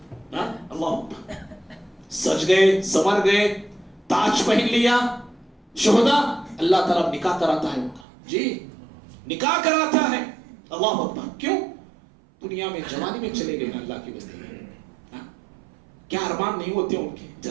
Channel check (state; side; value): drops out; left; at 8.1 s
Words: اللہ سج گئے, سمر گئے, تاج پہن لیا شہداء, اللہ تعالیٰ نکاح کراتا ہے ان کا, جی نکاح کراتا ہے. اللہ اکبر. کیوں؟ دنیا میں جوانی میں چلے گئے نا اللہ کی بندے, کیا ارمان نہیں ہوتے ان کے,